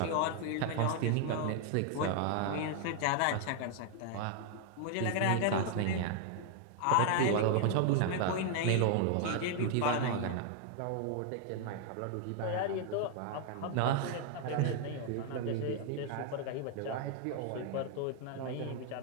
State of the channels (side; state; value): both; different; correlation 0.00